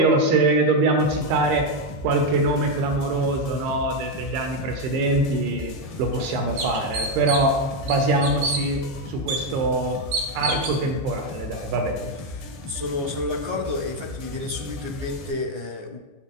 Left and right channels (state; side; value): late; left; 14 ms